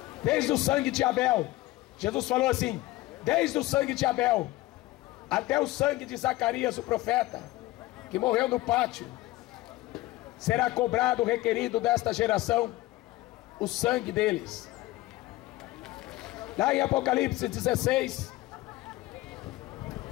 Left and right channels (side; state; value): right; quieter; 18.3 dB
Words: Desde o sangue de Abel, Jesus falou assim, desde o sangue de Abel até o sangue de Zacarias o profeta, que morreu no pátio, será cobrado, requerido desta geração, o sangue deles. Lá em Apocalipse 16,